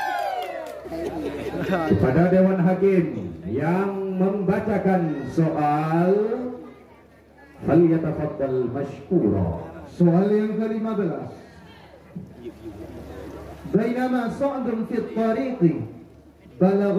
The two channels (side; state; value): both; identical; correlation 1.00